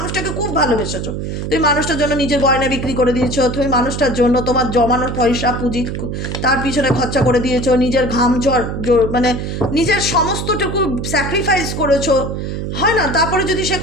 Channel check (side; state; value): right; noise; hum, 4 dB below the sound